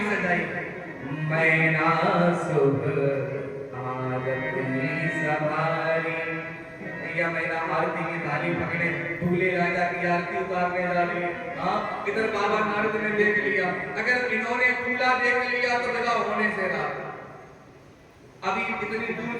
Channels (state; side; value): identical; both; correlation 1.00